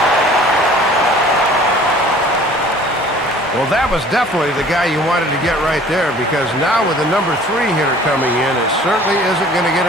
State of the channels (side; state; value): both; normal; correlation 0.50